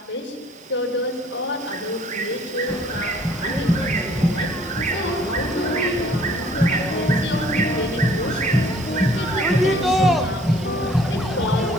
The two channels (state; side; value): normal; both; correlation 0.57